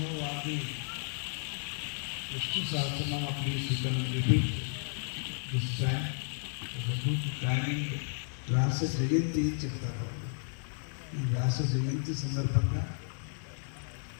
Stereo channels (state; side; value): silent; right; 56 dB below the other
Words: Sahasranama, please you can repeat this time. The good timing. వ్యాస జయంతి చెప్తారు. ఈ వ్యాస జయంతి సందర్భంగా